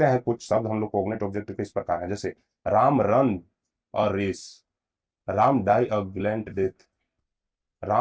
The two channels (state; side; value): identical; both; correlation 1.00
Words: हैं कुछ शब्द हम लोग कोग्नेट ऑब्जेक्ट किस प्रकार है। जैसे Ram run a race, Ram die a gallant death,